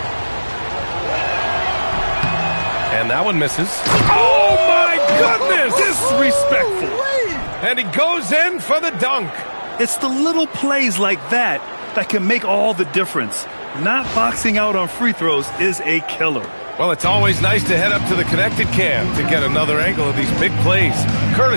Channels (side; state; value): both; inverted; correlation -1.00